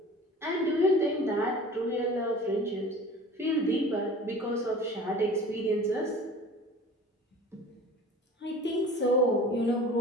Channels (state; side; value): normal; both; correlation 0.42